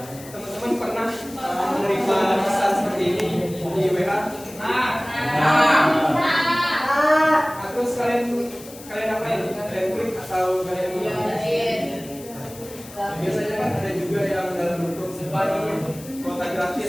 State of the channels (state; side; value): noise; left; hiss, 17 dB below the sound